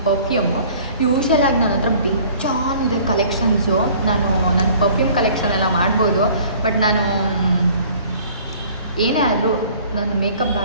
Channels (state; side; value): inverted; both; correlation -0.51